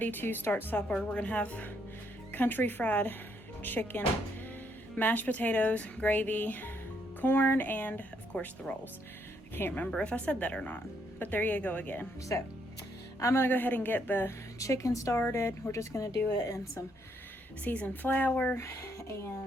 to start supper. We're gonna have country fried chicken, mashed potatoes, gravy, corn, and of course the rolls. I can't remember if I said that or not, but there you go again. So I'm gonna go ahead and get the chicken started. We're just gonna do it in some seasoned flour,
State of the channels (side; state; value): both; normal; correlation 0.73